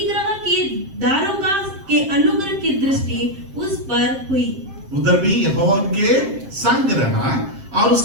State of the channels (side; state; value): left; late; 7.6 ms